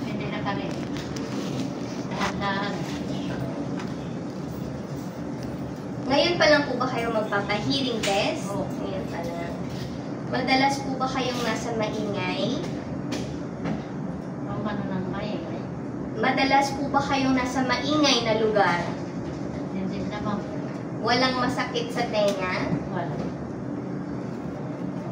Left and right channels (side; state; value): both; identical; correlation 1.00